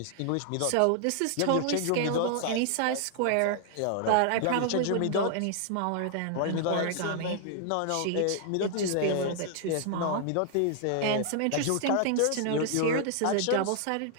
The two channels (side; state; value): both; different; correlation 0.00